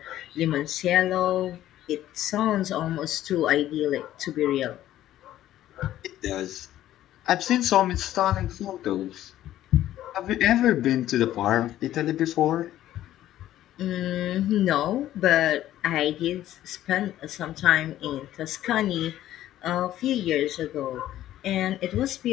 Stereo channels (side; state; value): right; quieter; 13.2 dB